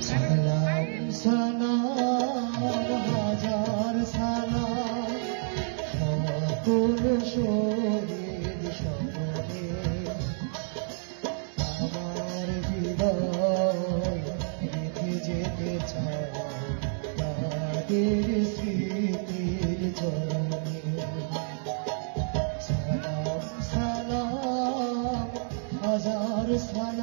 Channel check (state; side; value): silent; left; 59 dB below the other